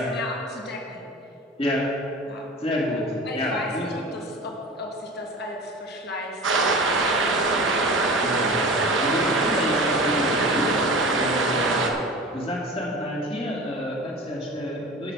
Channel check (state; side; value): normal; both; correlation 0.36